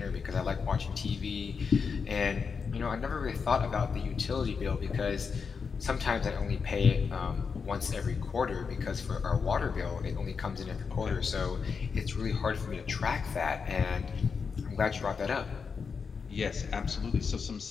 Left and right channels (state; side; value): quieter; right; 5.6 dB